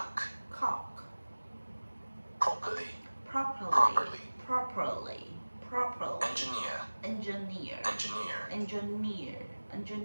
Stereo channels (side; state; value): both; inverted; correlation -1.00